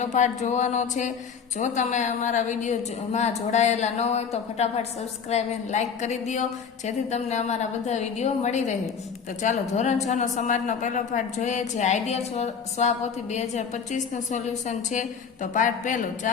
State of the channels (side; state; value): right; quieter; 6.5 dB